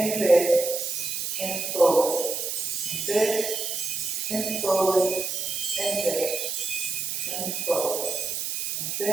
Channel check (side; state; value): right; noise; hiss, 2 dB below the sound